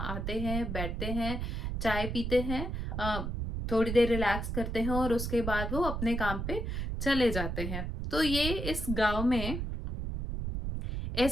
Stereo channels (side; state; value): right; noise; rumble, 3 dB below the sound